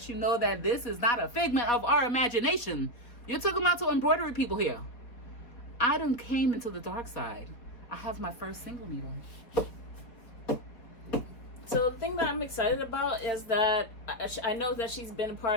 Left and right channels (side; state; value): right; late; 4.2 ms